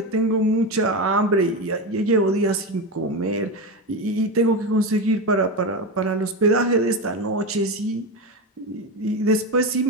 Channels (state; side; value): normal; both; correlation 0.17